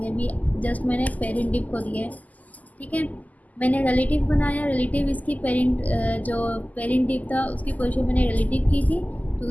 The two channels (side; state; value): right; late; 0.078 ms